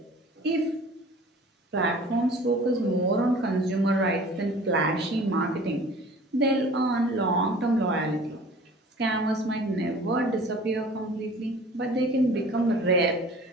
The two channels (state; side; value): normal; both; correlation 0.46